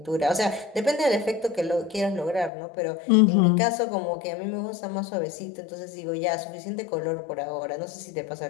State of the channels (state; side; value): drops out; right; at 2.5 s